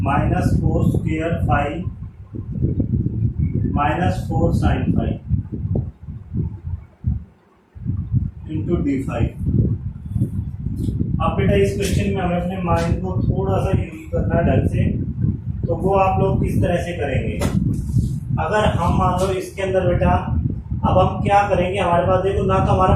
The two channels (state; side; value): identical; both; correlation 1.00